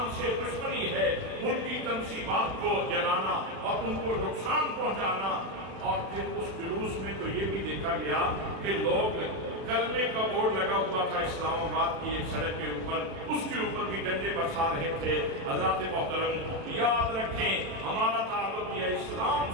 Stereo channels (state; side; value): late; left; 37 ms